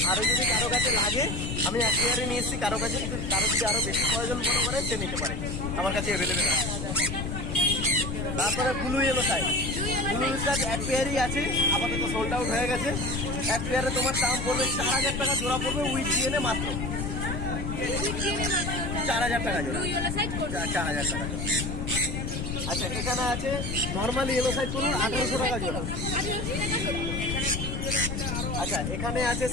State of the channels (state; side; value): noise; left; rumble, 3 dB below the sound